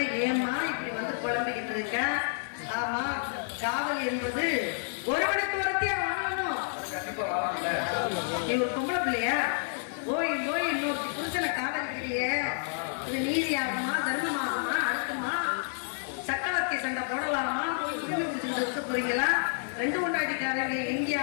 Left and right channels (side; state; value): right; silent; digital silence